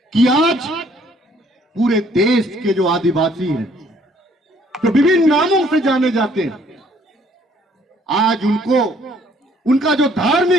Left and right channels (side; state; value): both; normal; correlation 0.62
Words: कि आज पूरे देश के जो आदिवासी हैं, जो विभिन्न नामों से जाने जाते हैं, आज उनको उनका जो